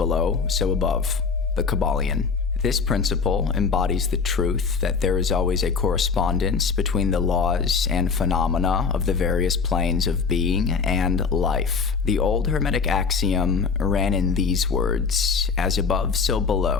so above. The Kybalion. This principle embodies the truth that there is always a correspondence between the laws and phenomena of the various planes of being and life. The old Hermetic axiom ran in these words: as above, so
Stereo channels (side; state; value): right; quieter; 5.3 dB